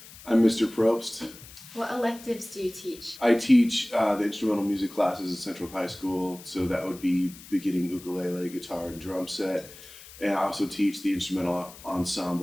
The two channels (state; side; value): noise; left; hiss, 18 dB below the sound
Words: I'm Mr. Probst. What electives do you teach? I teach the instrumental music classes at Central High School, so that would be beginning ukulele, guitar, and drum set. And I also teach the instrumental